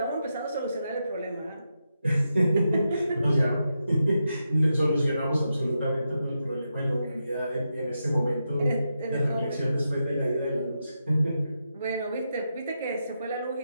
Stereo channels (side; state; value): both; inverted; correlation -0.86